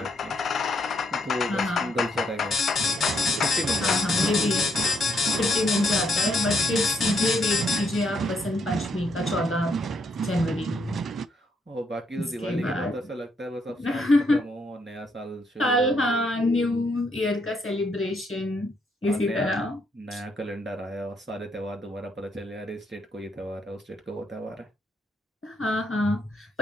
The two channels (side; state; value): both; normal; correlation 0.74